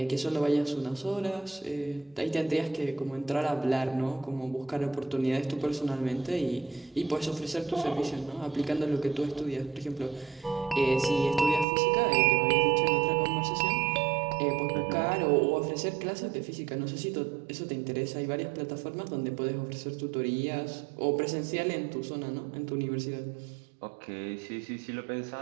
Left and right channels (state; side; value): drops out; left; at 11.7 s